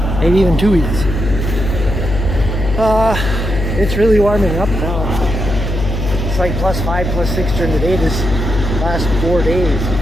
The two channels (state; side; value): noise; left; hum, 3 dB below the sound